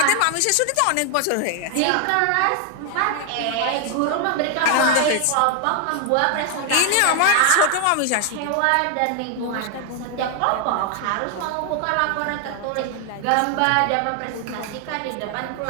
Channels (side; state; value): both; different; correlation 0.00